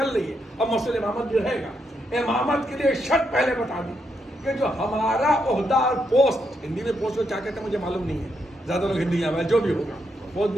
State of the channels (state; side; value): normal; both; correlation 0.80